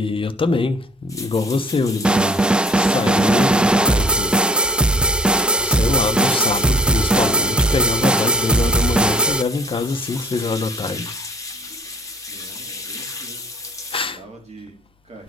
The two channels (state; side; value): normal; both; correlation 0.54